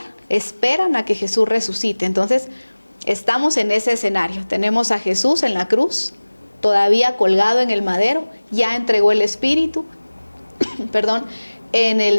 esperan a que Jesús resucite. Entonces, estamos en ese escenario. Tenemos a Jesús en la cruz, todavía colgado en el madero, ya entregó el Espíritu, perdón, en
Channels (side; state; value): both; inverted; correlation -1.00